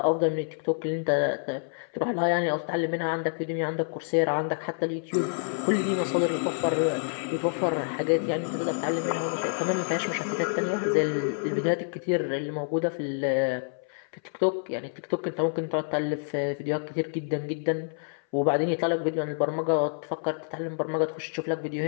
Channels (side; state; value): right; silent; 59 dB below the other